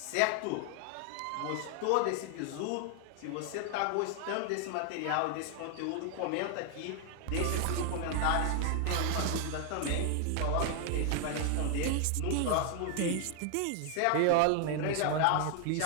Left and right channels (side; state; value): both; different; correlation 0.00